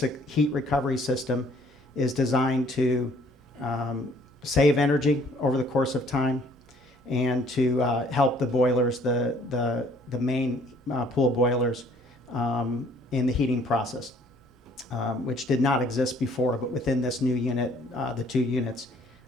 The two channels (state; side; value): normal; both; correlation 0.60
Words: heat recovery system is designed to save energy over the course of time and to help the boilers, the main pool boilers in the heating process, which did not exist before, but within this new unit, the two units,